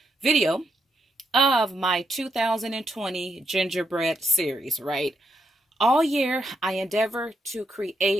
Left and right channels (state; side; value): normal; both; correlation 0.79